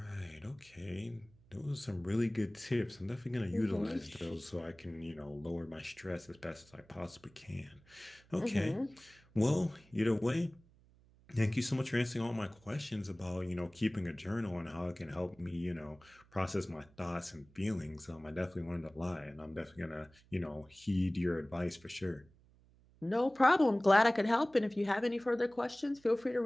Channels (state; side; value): noise; right; hum, 28 dB below the sound